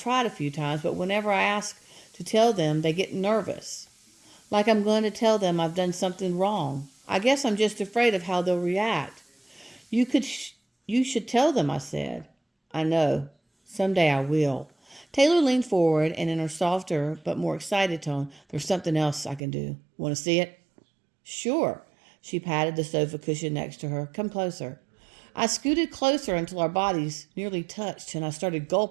tried a few times, but whenever I ask to tell them, they get nervous. Like I'm going to tell them I've done something wrong. I guess I'm just afraid of how they'll react. You should tell them, I said. I know. Someday I will. Taylor leaned forward, and in her softer but more excited tone, there's something else I can do. Want to see it? Sure. She patted the sofa cushion next to her. Come closer. I scooted closer until our bodies nearly touched, and I started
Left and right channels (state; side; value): drops out; left; at 19.4 s